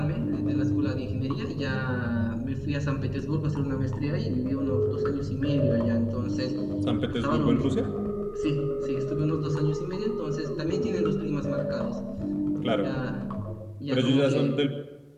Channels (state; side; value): identical; both; correlation 1.00